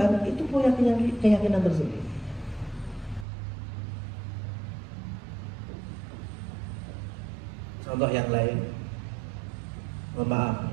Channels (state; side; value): drops out; left; at 3.2 s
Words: itu punya keyakinan tersebut. Contoh yang lain, maaf